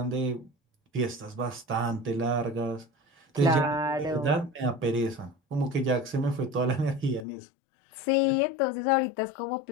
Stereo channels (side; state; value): right; drops out; at 7.2 s